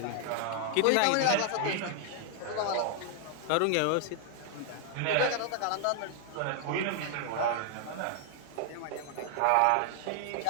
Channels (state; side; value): different; both; correlation 0.00